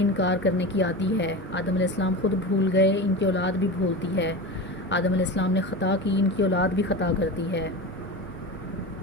انکار کرنے کی عادی ہے۔ آدم علیہ السلام خود بھول گئے، ان کی اولاد بھی بھولتی ہے۔ آدم علیہ السلام نے خطا کی، ان کی اولاد بھی خطا کرتی ہے۔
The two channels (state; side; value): normal; both; correlation 0.27